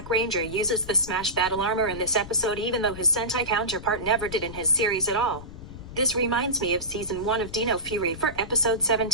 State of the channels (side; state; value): left; noise; rumble, 13 dB below the sound